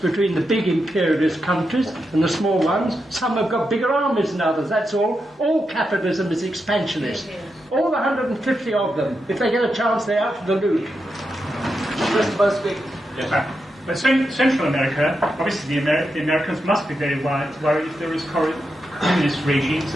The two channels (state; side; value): normal; both; correlation 0.86